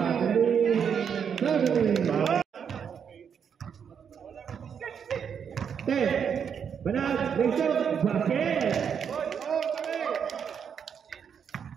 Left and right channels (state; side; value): quieter; left; 7.4 dB